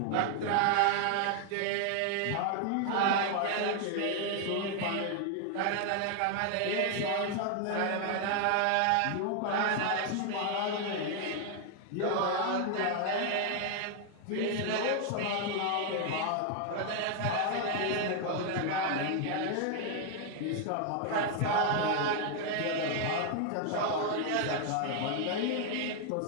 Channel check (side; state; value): both; different; correlation 0.00